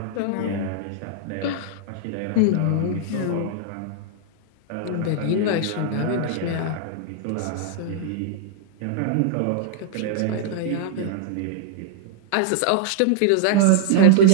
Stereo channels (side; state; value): both; different; correlation -0.01